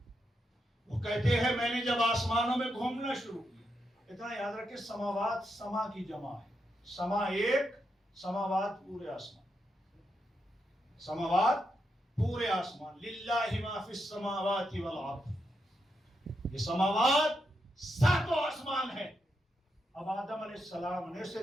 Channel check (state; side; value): normal; both; correlation 0.83